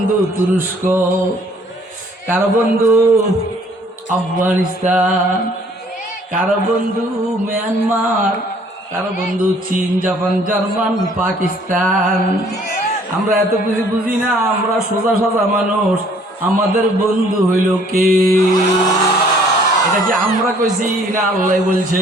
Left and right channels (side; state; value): both; normal; correlation 0.58